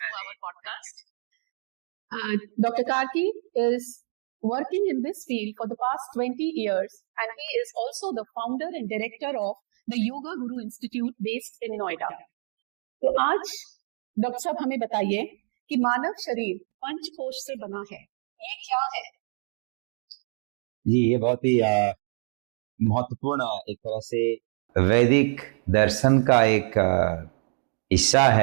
our podcast. Dr. Karki is working in this field for the past 20 years and he is also the founder and director of the Yoga Guru Institute based in Noida. तो आज doctor साहब हमें बताइए कि मानव शरीर पंचकोश से बना है, ये क्या है? जी, ये बहुत ही महत्वपूर्ण एक तरह से वैदिक दर्शन का एक हिस्सा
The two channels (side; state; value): left; silent; digital silence